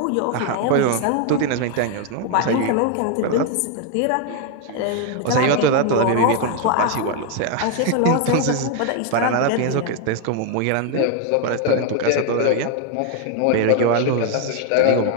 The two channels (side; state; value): both; different; correlation 0.01